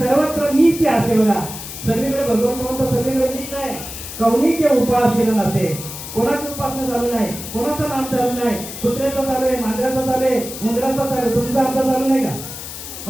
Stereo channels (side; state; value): left; noise; hiss, 10 dB below the sound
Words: मीच असे बघा, सगळीकडे भगवंत म्हणतो सगळीकडे मीच आहे. कौनीचे उपास केला नसे. कोणाची उपासना चालू नाही, कोणाचं नाम चालू नाही. कुत्र्याचं चालू आहे, मांजराचं चालू आहे, उंदराचं चालू आहे, तुमचं आमचं चालू नाही का?